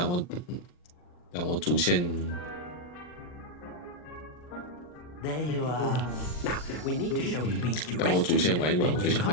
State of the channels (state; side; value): late; right; 40 ms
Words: 我主线。There you are. Now we need to show the beast you 但我主 rescued. 线玩一玩，我就想